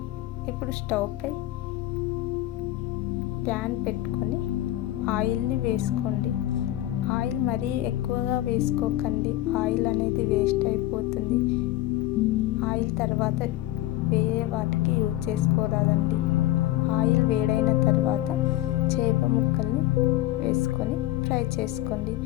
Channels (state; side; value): quieter; right; 15.1 dB